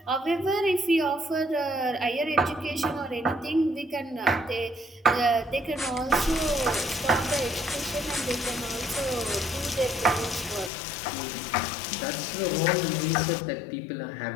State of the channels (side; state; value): right; drops out; at 10.7 s